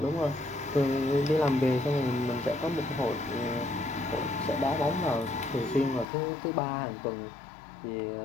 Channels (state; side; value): drops out; right; at 6.1 s